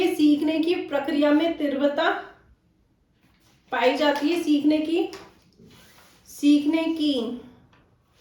सीखने की प्रक्रिया में तीव्रता पाई जाती है, सीखने की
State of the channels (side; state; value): both; identical; correlation 1.00